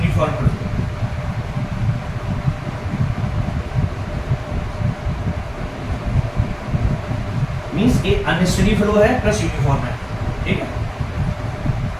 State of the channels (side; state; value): both; identical; correlation 1.00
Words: फ्लो। मींस ये अनस्टेडी फ्लो है प्लस यूनिफॉर्म है। ठीक है,